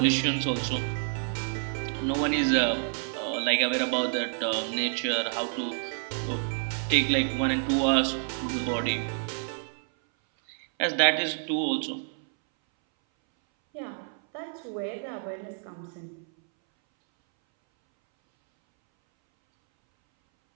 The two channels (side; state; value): left; silent; 59 dB below the other